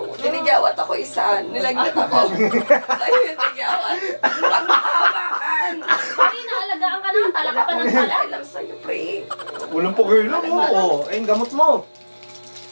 Tinigawat ako isa. Nilagnat ako. Sa'yo yung tinigawat. Pag makahawakan. Pare, naalagaan ka na. Tala ka pa ng tala. Alam sa'yo, pre. Walang pagkailan mo. Ayun, gamot mo.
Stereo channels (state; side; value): inverted; both; correlation -1.00